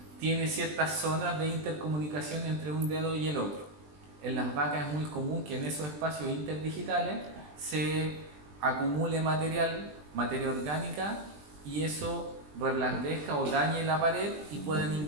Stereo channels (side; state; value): left; late; 20 ms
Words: tiene ciertas zonas de intercomunicación entre un dedo y el otro. En las vacas es muy común que en esos espacios interdigitales se acumule materia orgánica, y eso reblandezca o dañe la pared y pueden